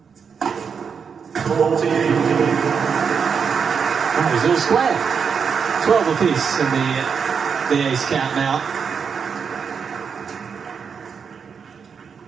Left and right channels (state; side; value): quieter; left; 6.3 dB